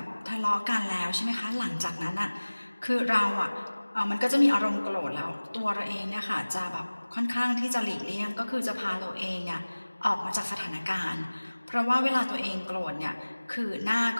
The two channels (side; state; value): both; inverted; correlation -1.00